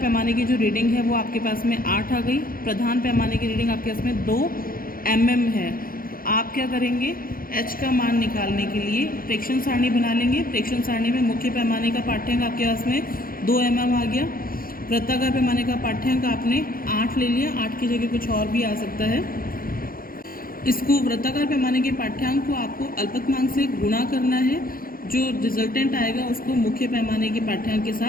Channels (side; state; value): right; late; 0.42 ms